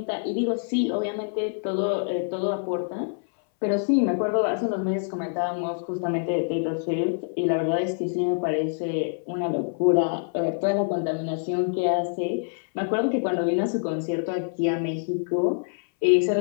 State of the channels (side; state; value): right; silent; 61 dB below the other